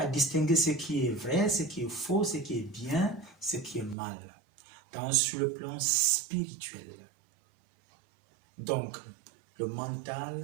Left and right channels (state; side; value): drops out; left; at 4.0 s